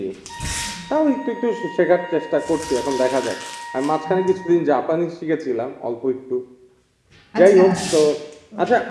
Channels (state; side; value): identical; both; correlation 1.00